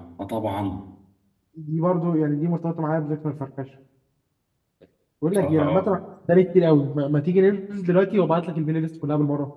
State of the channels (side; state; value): both; identical; correlation 1.00